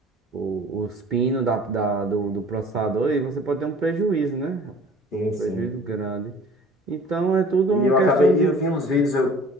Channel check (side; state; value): both; normal; correlation 0.48